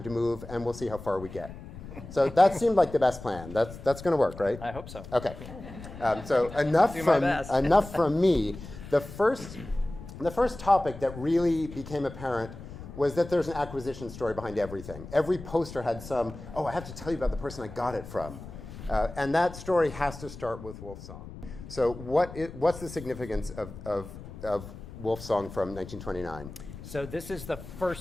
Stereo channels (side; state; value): left; noise; rumble, 13 dB below the sound